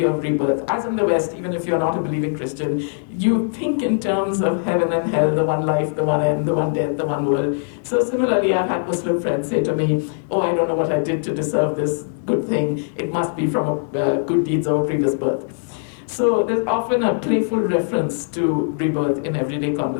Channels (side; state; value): right; silent; digital silence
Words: of rebirth. As in the West, even if you're not a believing Christian, you think in terms of heaven and hell, the one life, the one end, the one death, the one world. So similarly, I've had Muslim friends say to me, oh, I don't know what I did to deserve this good thing. It must be from good deeds of a previous birth. So there's often a playful reference to rebirth in everyday